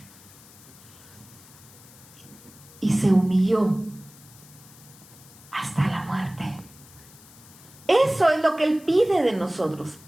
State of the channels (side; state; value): left; noise; hiss, 22 dB below the sound